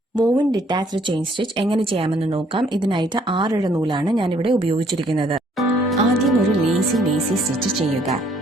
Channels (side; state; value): both; normal; correlation 0.64